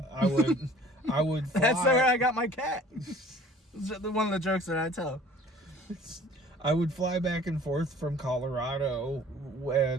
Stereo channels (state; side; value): normal; both; correlation 0.50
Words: would fly. That's where I got my cat. One of the jokes that I tell. I would fly back and forth from Colorado